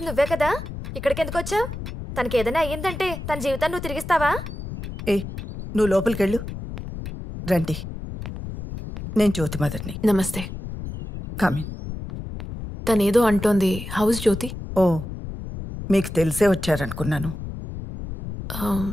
నువ్వే కదా, ఇక్కడికి ఎందుకు వచ్చావు? తనకి ఏదైనా అయ్యిందంటే తన జీవితాన్ని నువ్వు తిరిగిస్తావా? ఏ నువ్వు లోపలికెళ్ళు. రండి, నేను జ్యోతి మదర్ని. నమస్తే. కమిన్. తనేదో అంటోంది. హౌస్ జ్యోతి? ఓ, మీకు తెలిసే వచ్చారనుకున్నాను.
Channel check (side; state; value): left; noise; rumble, 8 dB below the sound